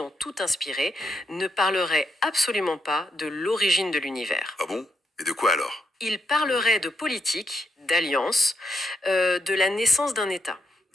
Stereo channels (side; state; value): both; normal; correlation 0.79